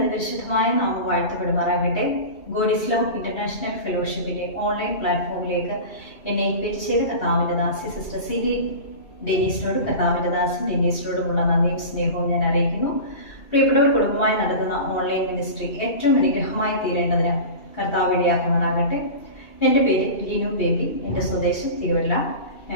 നാമം വാഴ്ത്തപ്പെടുമാറാകട്ടെ. ഗോഡ് ഈസ് ലവ് ഇന്റർനാഷണൽ ഫെലോഷിപ്പിന്റെ ഓൺലൈൻ പ്ലാറ്റ്ഫോമിലേക്ക് എന്നെ ഇൻവൈറ്റ് ചെയ്ത കർത്താവിന്റെ ദാസി സിസ്റ്റർ സിലി ഡെനീസിനോടും കർത്താവിന്റെ ദാസൻ ഡെനീസിനോടുമുള്ള നന്ദിയും സ്നേഹവും ഞാൻ അറിയിക്കുന്നു. പ്രിയപ്പെട്ടവർ, കുടുംബമായി നടത്തുന്ന ഓൺലൈൻ മിനിസ്ട്രി ഏറ്റവും അനുഗ്രഹമായി തീരേണ്ടതിന് കർത്താവ് ഇടയാക്കുമാറാകട്ടെ. എൻ്റെ പേര് ലിനു ബേബി. എൻ്റെ സ്വദേശം തിരുവല്ല.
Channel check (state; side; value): late; right; 2.7 ms